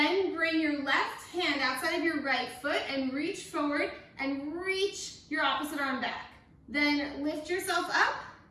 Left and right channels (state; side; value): identical; both; correlation 1.00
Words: bring your left hand outside of your right foot and reach forward and reach your opposite arm back. Then lift yourself up,